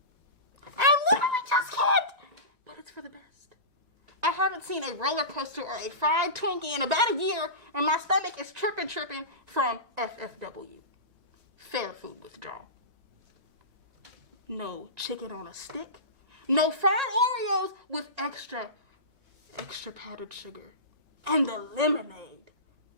I literally just can't! But it's for the best. I haven't seen a roller coaster or a fried Twinkie in about a year, and my stomach is tripping from FFW. Fair food withdrawal. No chicken on a stick. No fried Oreos with extra powdered sugar. And the lemonade.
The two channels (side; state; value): left; late; 1.9 ms